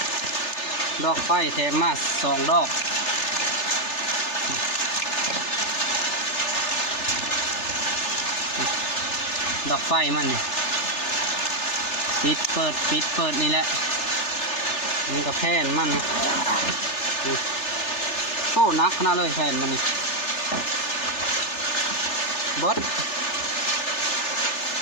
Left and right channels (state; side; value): late; right; 3.3 ms